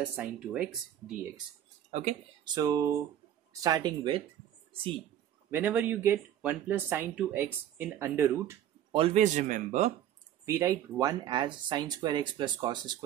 sin 2x dx. Okay, so starting with, see, whenever you get 1 plus sin 2x in under root, always remember we write 1 as sin square x plus cos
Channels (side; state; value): left; quieter; 11.0 dB